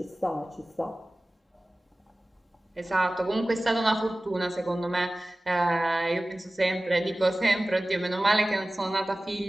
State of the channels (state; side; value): normal; both; correlation 0.97